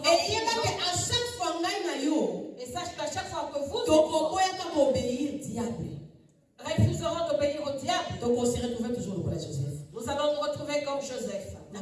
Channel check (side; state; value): both; identical; correlation 1.00